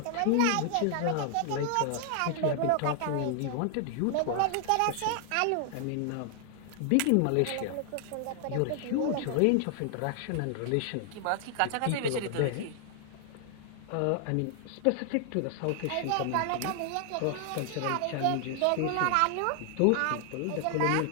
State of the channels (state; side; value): different; both; correlation 0.00